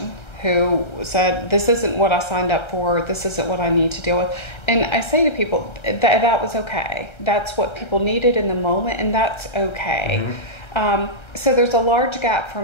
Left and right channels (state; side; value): late; right; 1.3 ms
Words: who said, this isn't what I signed up for, this isn't what I need to deal with. And I say to people, that was okay. That's what people needed in the moment, and that's okay. So there's a large gap